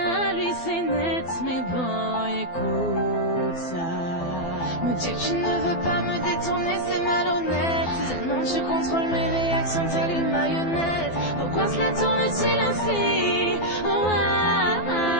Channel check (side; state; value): right; late; 12 ms